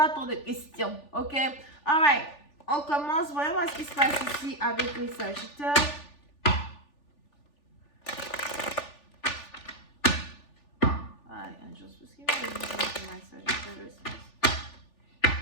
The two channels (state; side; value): late; right; 3.4 ms